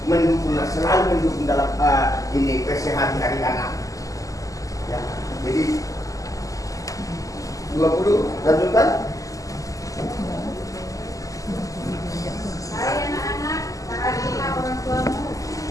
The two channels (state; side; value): late; right; 0.16 ms